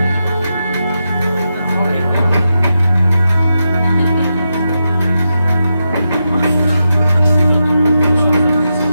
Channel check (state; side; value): inverted; both; correlation -0.87